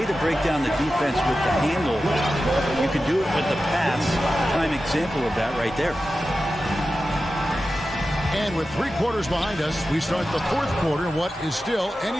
to break down the defense with the handle. You can do it with the pass. Prime example of that right there. And with 3 quarters behind us, we start the 4th quarter in what is still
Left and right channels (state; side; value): normal; both; correlation 0.93